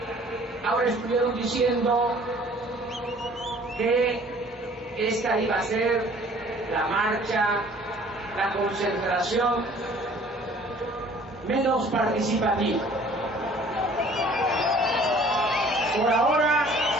Ahora estuvieron diciendo que esta iba a ser la marcha, la concentración menos participativa. Por ahora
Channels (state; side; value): normal; both; correlation 0.53